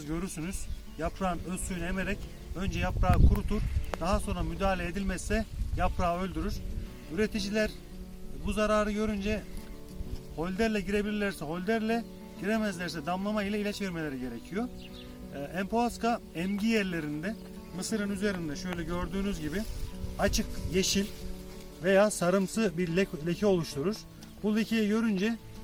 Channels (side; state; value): both; identical; correlation 1.00